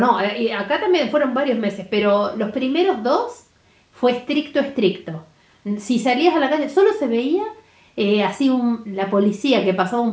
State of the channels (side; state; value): both; identical; correlation 1.00